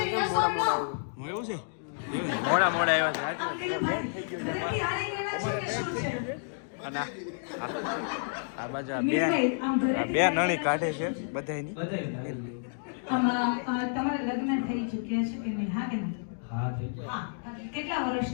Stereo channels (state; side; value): silent; right; digital silence